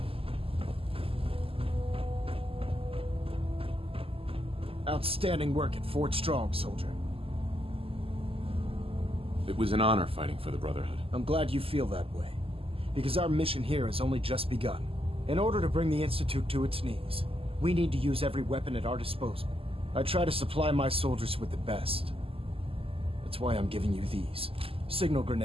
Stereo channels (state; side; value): late; left; 0.27 ms